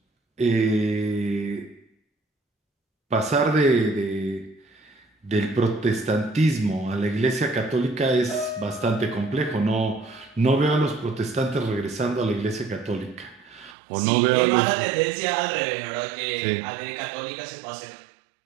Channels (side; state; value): left; drops out; at 13.8 s